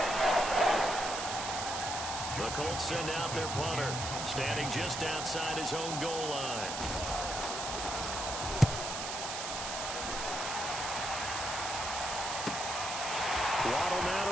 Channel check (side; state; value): right; noise; hiss, 4 dB below the sound